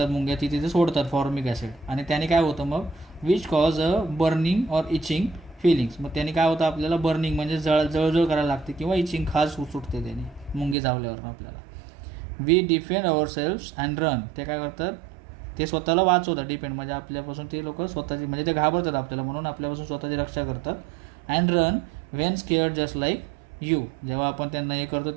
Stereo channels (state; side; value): drops out; left; at 10.8 s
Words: मुंग्या तिथे ते सोडतात फॉर्मिक ॲसिड, आणि त्याने काय होतं मग, which cause a burning or itching feelings, मग त्याने काय होतं, आपल्याला बर्निंग म्हणजे जळजळ करायला लागते किंवा इचिंग खास सुटते त्याने मुंगी चावल्यावर आपल्याला. We defend ourselves and run, ते काय करतात, ते स्वतःला वाचवतात, डिपेंड म्हणजे आपल्यापासून ते लोक स्वतःची, म्हणजे ते घाबरतात आपल्याला म्हणून आपल्यापासून स्वतःची रक्षा करतात. And run Wien scared just like you, जेव्हा आपण त्यांना हे करतो